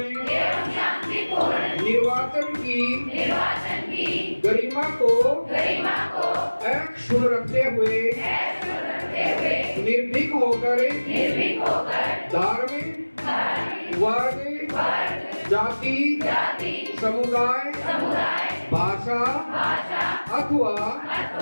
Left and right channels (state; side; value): inverted; both; correlation -1.00